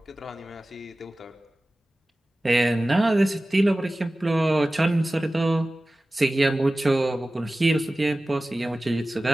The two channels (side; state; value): both; normal; correlation 0.97